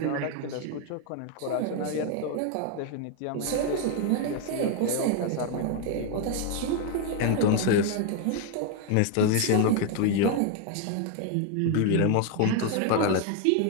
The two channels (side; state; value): both; different; correlation 0.01